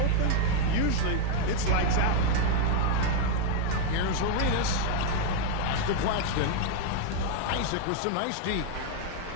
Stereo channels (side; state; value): both; different; correlation 0.01